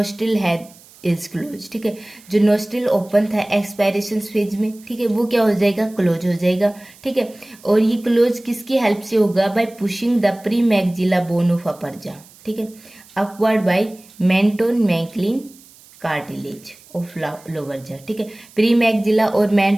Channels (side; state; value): right; noise; hiss, 25 dB below the sound